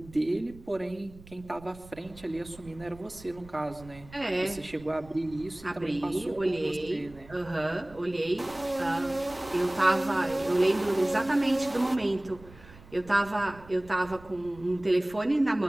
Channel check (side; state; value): right; noise; rumble, 21 dB below the sound